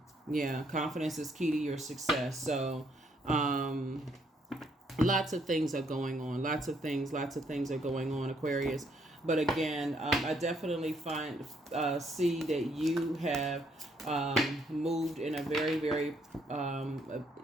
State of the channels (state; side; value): normal; both; correlation 0.70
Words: Yeah, confidence is key to your success. So lots of things are going on. Lots of things are going on, Aquarius. But again, I definitely see that you have moved in a very, very,